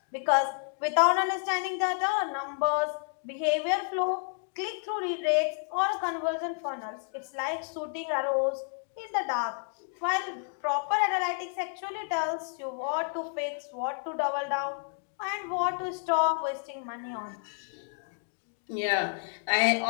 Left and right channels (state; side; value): silent; right; 58 dB below the other